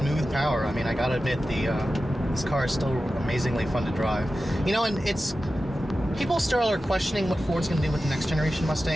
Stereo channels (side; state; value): both; normal; correlation 0.93